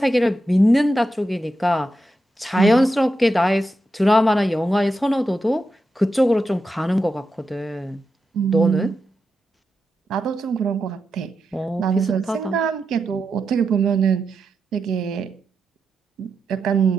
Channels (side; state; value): both; normal; correlation 0.87